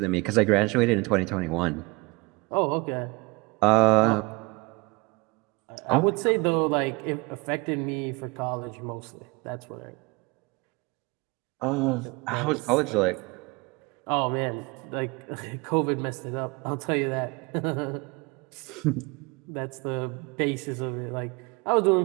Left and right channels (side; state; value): left; quieter; 26.1 dB